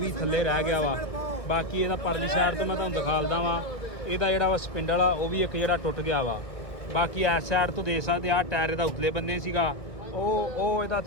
ਥੱਲੇ ਰਹਿ ਗਿਆ ਵਾ। ਬਾਕੀ ਇਹਦਾ ਪਰਲੀ ਸਾਈਡ ਤੋਂ ਮੈਂ ਤੁਹਾਨੂੰ ਦਿਖਾਲਦਾ ਵਾ, ਇਹਦਾ ਜਿਹੜਾ ਵਾ ਸਪਿੰਡਲ ਆ ਉਹ ਵੀ ਇੱਕ ਜਿਹੜਾ ਟੁੱਟ ਗਿਆ ਵਾ। ਬਾਕੀ ਇਸ ਸਾਈਡ ਤੋਂ ਦੇਖ ਸਕਦੇ ਆ ਟਾਇਰ ਇਹਦਾ ਉਤਲੇ ਬੰਨੇ ਸੀਗਾ, ਉਹ ਇਹਦਾ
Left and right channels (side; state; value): right; late; 1.5 ms